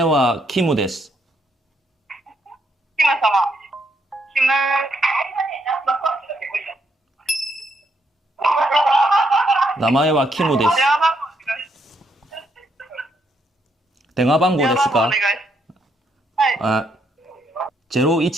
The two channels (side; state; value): both; normal; correlation 0.75